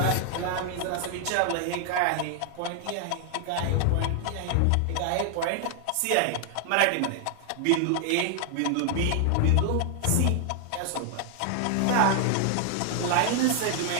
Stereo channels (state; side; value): different; both; correlation 0.00